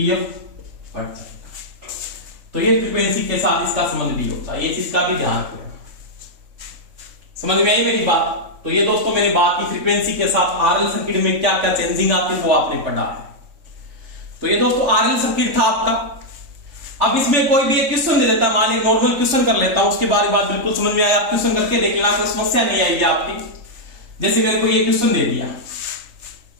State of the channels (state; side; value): late; left; 3.4 ms